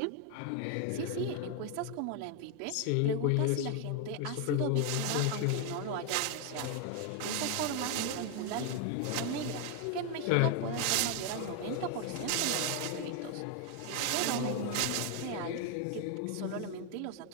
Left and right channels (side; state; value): both; different; correlation 0.01